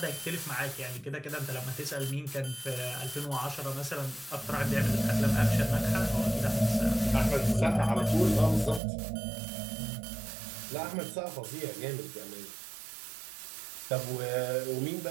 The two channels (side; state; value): left; drops out; at 8.8 s